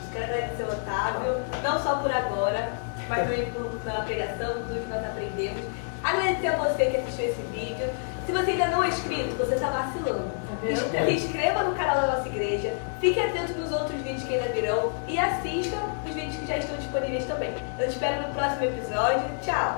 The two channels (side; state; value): right; silent; 60 dB below the other